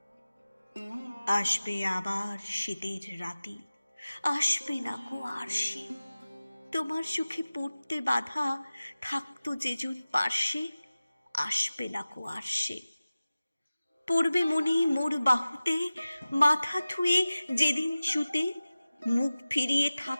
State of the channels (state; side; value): inverted; both; correlation -0.97